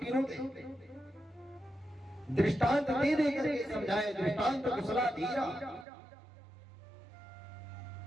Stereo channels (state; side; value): drops out; left; at 5.9 s